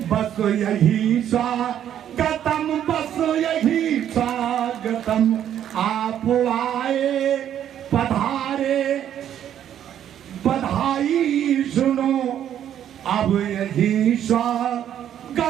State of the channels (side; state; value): left; quieter; 10.3 dB